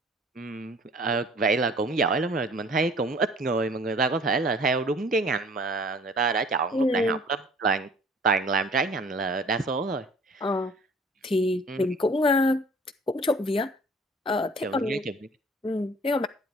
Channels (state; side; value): normal; both; correlation 0.51